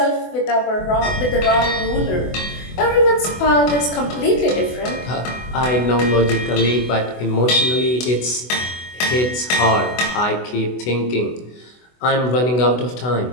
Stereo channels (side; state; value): right; late; 24 ms